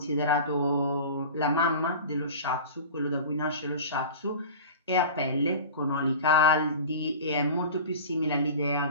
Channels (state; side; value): inverted; both; correlation -0.35